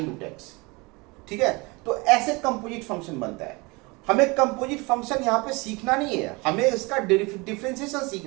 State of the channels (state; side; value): quieter; left; 25.9 dB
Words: रूट x, ठीक है। तो ऐसे कंपोजिट फंक्शन बनता है। हमें कंपोजिट फंक्शन यहाँ पे सीखना नहीं है, हमें इसका डिफरेंशिएशन